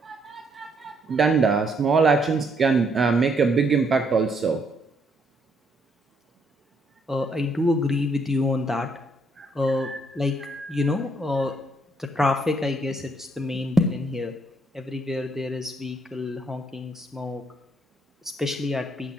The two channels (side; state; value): both; normal; correlation 0.71